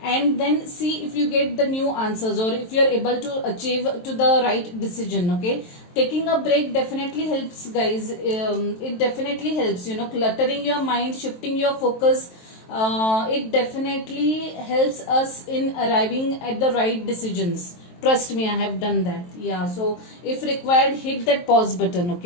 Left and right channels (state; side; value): late; right; 23 ms